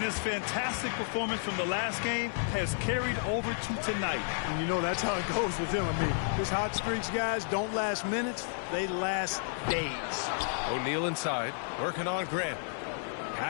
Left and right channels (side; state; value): right; silent; 57 dB below the other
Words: his fantastic performance from the last game has carried over to tonight. And you know that's how it goes with him. I mean, his hot streaks, guys, don't last minutes. They last days. O'Neal inside, working on Grant.